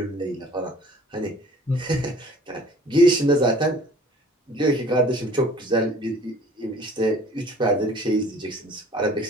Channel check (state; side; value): normal; both; correlation 0.50